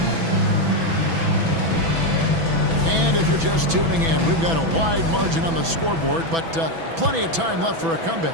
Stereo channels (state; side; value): late; left; 6.1 ms